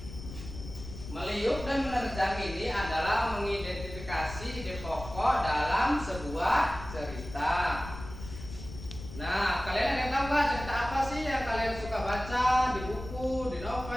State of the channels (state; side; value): noise; left; rumble, 11 dB below the sound